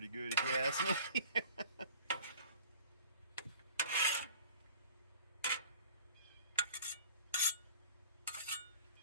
good if you ask me.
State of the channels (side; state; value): both; inverted; correlation -0.47